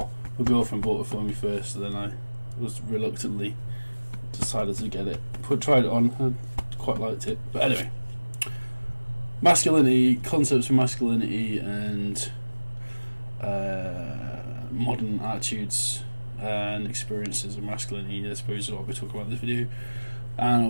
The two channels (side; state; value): both; inverted; correlation -1.00